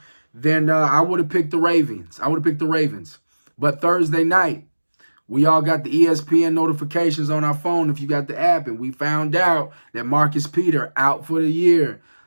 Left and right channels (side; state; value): both; inverted; correlation -1.00